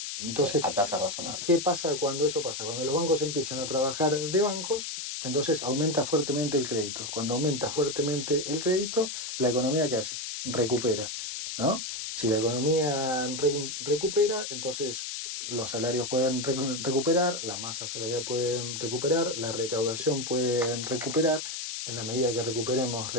Entonces, a tasas razonables. ¿qué pasa cuando eso pasa? Cuando los bancos empiezan a trabajar de bancos, entonces aumenta fuertemente el crédito. Cuando aumenta fuertemente el crédito, la economía ¿qué hace? Recupera, ¿no? Si la economía recupera, entonces los salarios pueden recuperar, las masas salariales pueden recuperar, la recaudación puede recuperar. En la medida que recuperemos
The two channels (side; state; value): left; noise; hiss, 5 dB below the sound